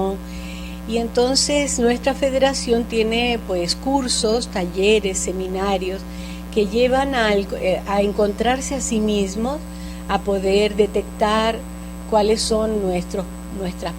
Y entonces nuestra federación tiene pues cursos, talleres, seminarios que llevan a encontrarse a sí mismos, a poder detectar cuáles son nuestras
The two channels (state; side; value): identical; both; correlation 1.00